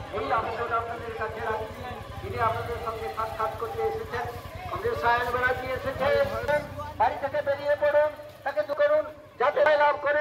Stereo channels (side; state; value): both; identical; correlation 1.00